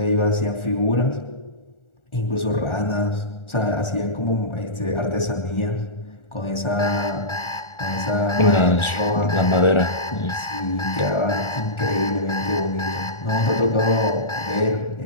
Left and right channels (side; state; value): right; late; 1.4 ms